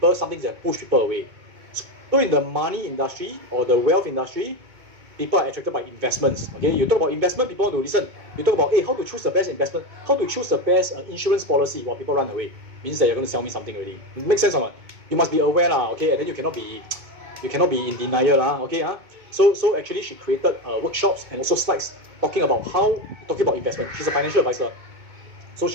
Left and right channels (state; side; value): late; left; 2.2 ms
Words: some things that push people away. So in the money industry or the wealth industry, people are attracted by investments. Okay, you talk about investment, people want to listen. You talk about, hey, how to choose the best investment, how to choose the best insurance policy while people run away. Means that you're going to sell me something already. It makes sense or not? You must be aware, okay, and then you cannot be in denial, okay. So actually, she created workshops and also slides talking about investment. She's a financial advisor. So